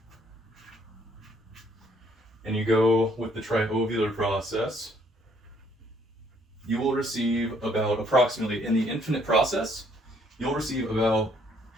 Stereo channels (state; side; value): normal; both; correlation 0.66